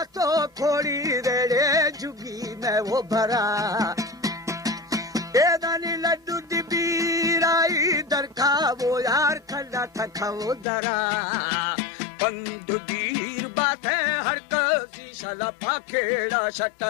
वो भरा एदानी लड्डू दिबीराई दरखा वो यार खड़ा थका वो दरा पंदु दीर बात है हर कसी शला पाखेड़ा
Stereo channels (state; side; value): drops out; right; at 10.7 s